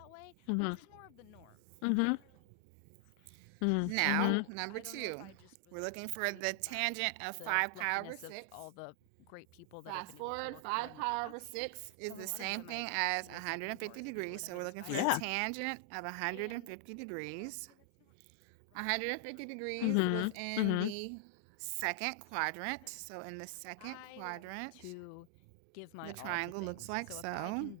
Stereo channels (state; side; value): different; both; correlation 0.00